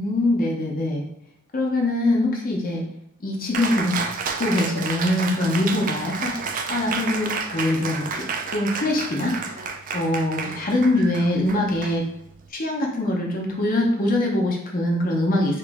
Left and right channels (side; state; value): both; normal; correlation 0.65